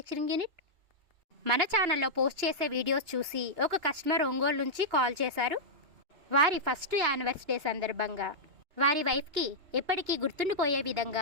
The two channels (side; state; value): left; late; 2.9 ms